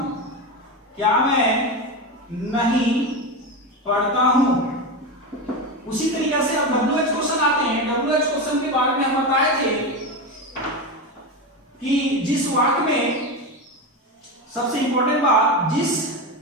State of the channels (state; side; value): normal; both; correlation 0.18